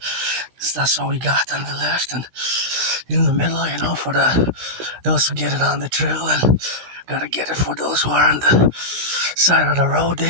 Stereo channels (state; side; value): late; left; 16 ms